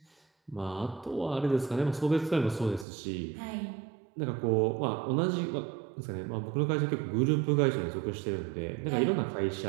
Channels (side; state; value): left; drops out; at 2.9 s